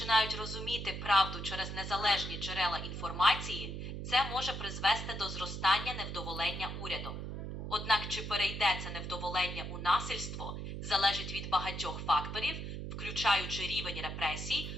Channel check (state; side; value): noise; right; hum, 6 dB below the sound